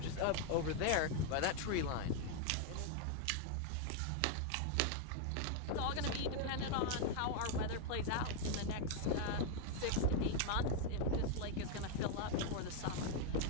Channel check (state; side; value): different; both; correlation 0.00